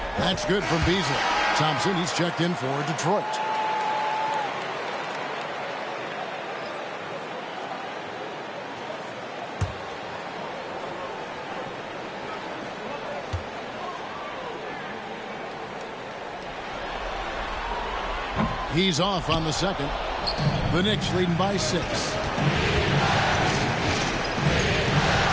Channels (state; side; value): identical; both; correlation 1.00